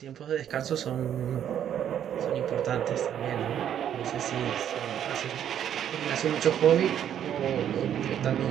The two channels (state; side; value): quieter; left; 9.8 dB